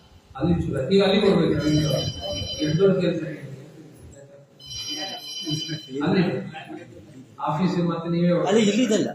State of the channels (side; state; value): both; identical; correlation 1.00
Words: ಅಲ್ಲಿ ಈಗ ಅಲ್ಲಿ ಕೊಡ್ಬೇಕು. ಎಷ್ಟು ದೊಡ್ಡ ಕೆಲಸ ಅಲ್ಲಿ ಆಫೀಸ್ ಮತ್ತೆ ನೀವೇ ಇಲ್ಲಿದಲ್ಲ